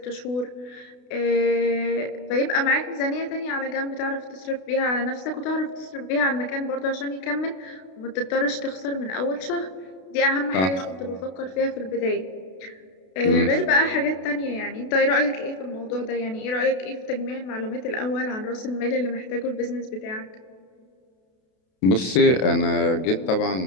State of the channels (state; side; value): late; right; 32 ms